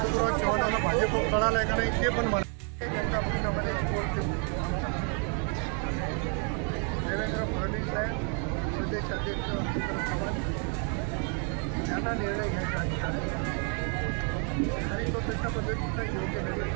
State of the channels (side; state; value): left; quieter; 39.8 dB